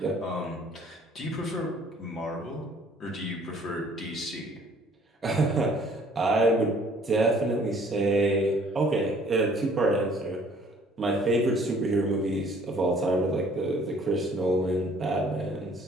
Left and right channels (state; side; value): normal; both; correlation 0.57